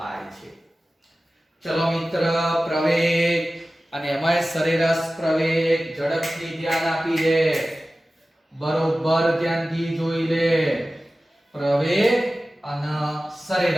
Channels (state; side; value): normal; both; correlation 0.96